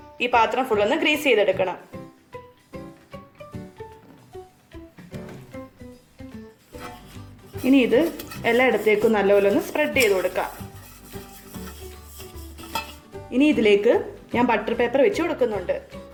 ഈ പാത്രം ഫുള്ളൊന്ന് ഗ്രീസ് ചെയ്തെടുക്കണം. ഇനി ഇത് എല്ലായിടത്തേക്കും നല്ലപോലെ ഒന്ന് സ്പ്രെഡ് ചെയ്ത് കൊടുക്കാം. ഇനി ഇതിലേക്ക് ഞാൻ ബട്ടർ പേപ്പർ വെച്ച് കൊടുക്കുന്നുണ്ട്.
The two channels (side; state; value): both; identical; correlation 1.00